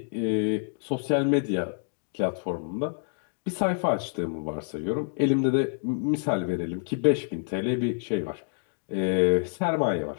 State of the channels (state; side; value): silent; right; digital silence